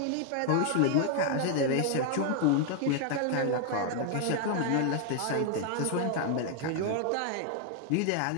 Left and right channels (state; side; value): different; both; correlation 0.00